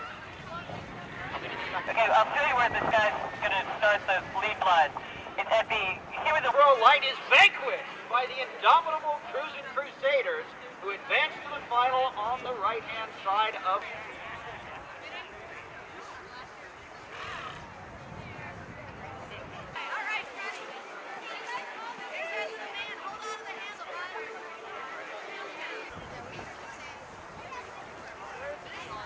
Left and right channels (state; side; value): identical; both; correlation 1.00